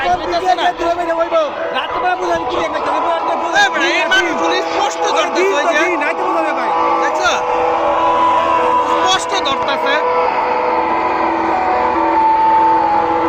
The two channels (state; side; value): identical; both; correlation 1.00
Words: রাত্রে বেলা বোঝা কি একটা এই মানুষগুলো স্পষ্ট ধরতেছে ওই যে নাইতে বোঝা যাবে ভাই দেখছো স্পষ্ট ধরতেছে